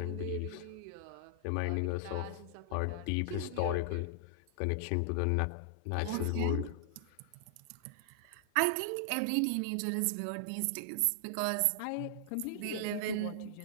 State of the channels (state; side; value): different; both; correlation -0.01